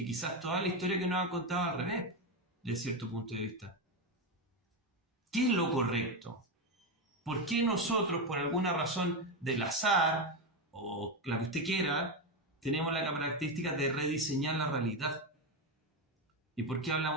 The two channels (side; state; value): both; normal; correlation 0.12